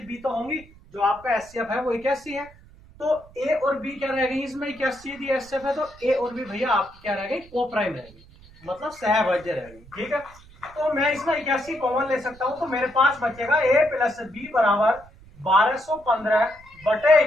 बी तो होंगी। जो आपका एचसीएफ है वो 81 है, तो ए और बी क्या रह गई इसमें? 81 दी एचसीएफ है, तो ए और बी भैया आपकी क्या रह गई? को प्राइम रहेगी, मतलब सहभाज्य रहेगी, ठीक है। तो मैं इसमें 81 कॉमन ले सकता हूं, तो मेरे पास बचेगा ए प्लस बी बराबर 1215 बटे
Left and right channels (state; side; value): noise; right; rumble, 24 dB below the sound